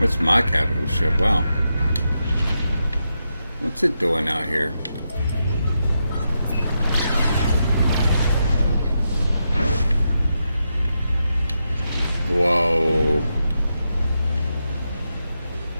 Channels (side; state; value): both; inverted; correlation -0.86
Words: my capital ship? Wow. What's it doing out here? Whoa.